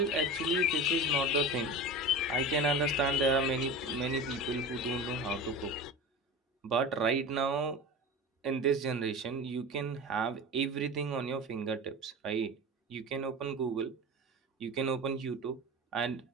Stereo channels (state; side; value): normal; both; correlation 0.31